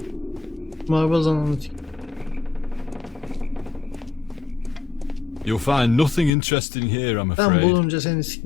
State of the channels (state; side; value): drops out; right; at 6.3 s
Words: marbaz ananı tik. You'll find nothing interesting here, I'm Ben afraid. bulunca seni